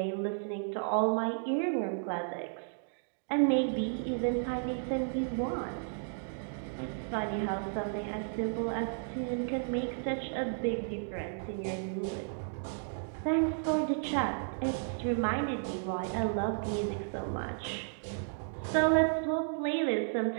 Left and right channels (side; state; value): left; silent; digital silence